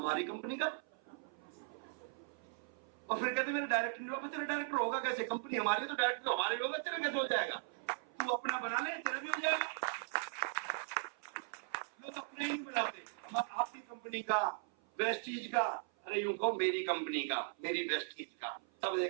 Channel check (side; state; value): left; silent; 52 dB below the other